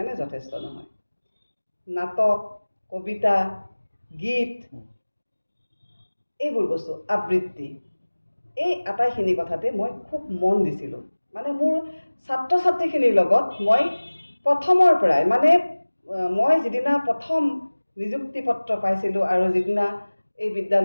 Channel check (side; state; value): both; inverted; correlation -1.00